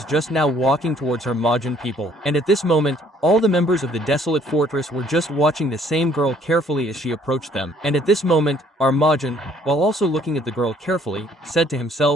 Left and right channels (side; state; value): both; normal; correlation 0.61